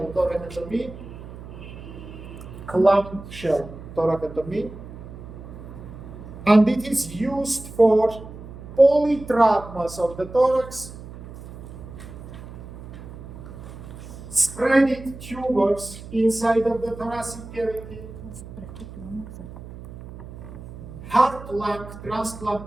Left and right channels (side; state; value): right; noise; hum, 14 dB below the sound